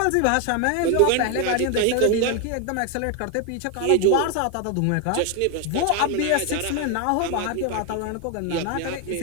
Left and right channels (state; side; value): different; both; correlation 0.01